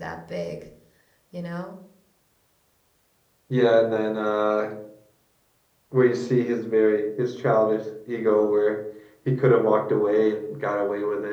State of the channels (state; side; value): identical; both; correlation 1.00